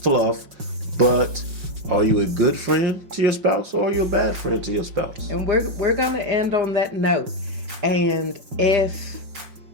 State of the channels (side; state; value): left; late; 5.4 ms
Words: but are you a good friend to your spouse or are you a bad friend to your spouse? And we're going to end on that note. And